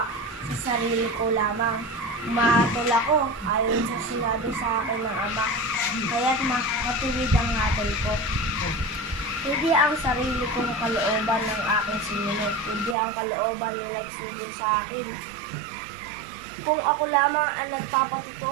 sa sarili ko lamang. Mahatol ako ayon sa sinabi sa akin ng Ama, kaya't matuwid ang hatol ko. Hindi ang sarili kong kalooban ng aking sinunod, hindi ang kalooban na nagsilbi sa akin. Kung ako lamang ang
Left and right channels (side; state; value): left; drops out; at 13.0 s